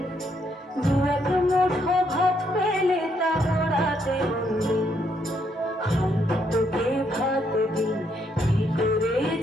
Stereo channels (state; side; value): normal; both; correlation 0.74